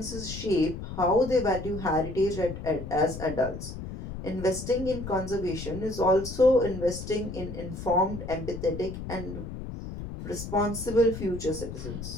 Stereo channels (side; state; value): left; noise; rumble, 8 dB below the sound